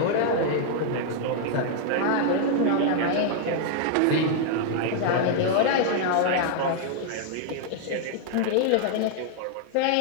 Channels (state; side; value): different; both; correlation 0.00